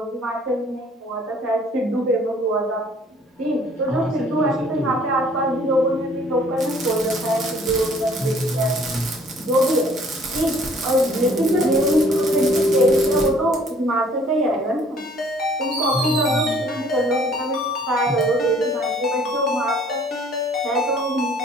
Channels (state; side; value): normal; both; correlation 0.57